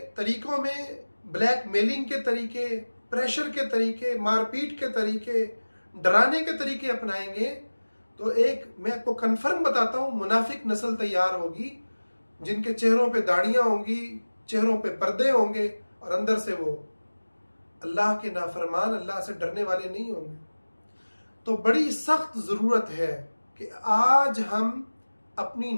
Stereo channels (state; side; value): inverted; both; correlation -1.00